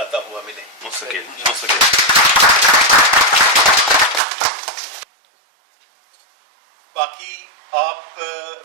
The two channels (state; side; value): drops out; left; at 4.2 s